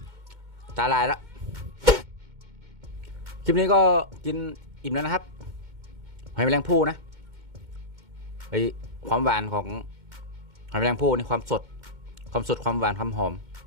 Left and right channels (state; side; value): late; left; 2.2 ms